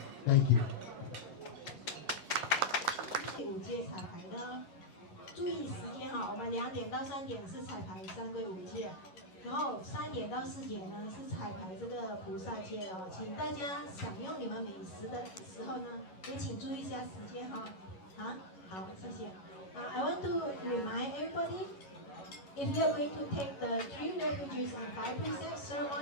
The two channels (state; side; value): late; right; 11 ms